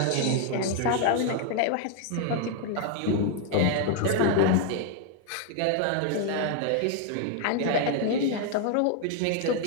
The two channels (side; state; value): both; different; correlation 0.00